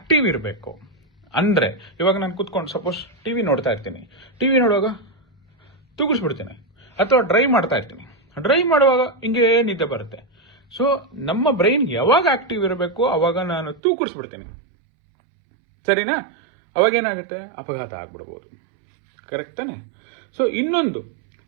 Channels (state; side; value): drops out; left; at 13.8 s